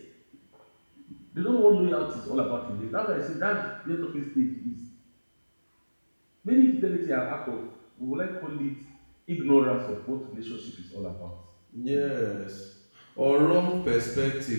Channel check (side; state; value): both; inverted; correlation -1.00